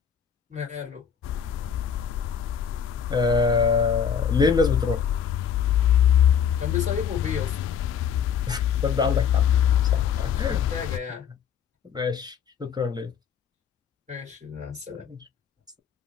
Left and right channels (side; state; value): right; quieter; 7.6 dB